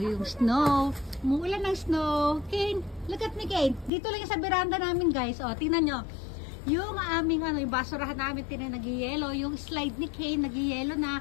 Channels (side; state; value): right; drops out; at 3.9 s